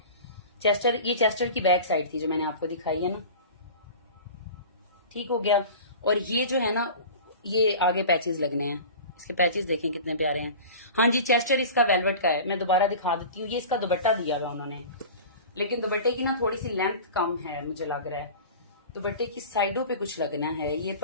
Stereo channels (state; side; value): inverted; both; correlation -0.37